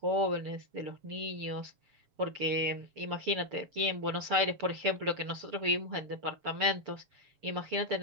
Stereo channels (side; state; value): left; late; 7.2 ms